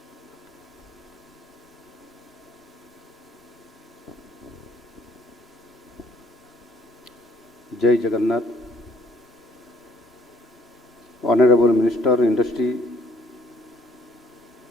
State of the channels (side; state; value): both; normal; correlation 0.62